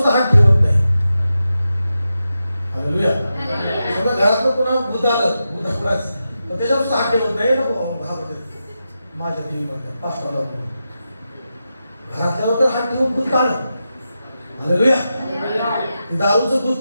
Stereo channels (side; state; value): both; inverted; correlation -0.90